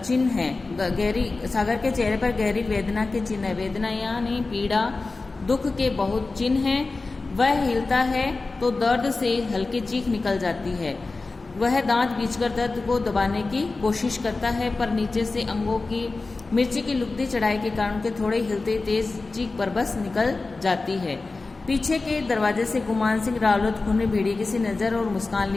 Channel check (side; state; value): right; quieter; 3.6 dB